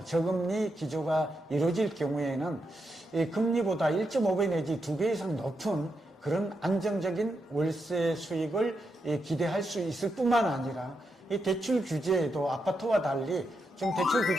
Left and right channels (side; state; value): both; normal; correlation 0.84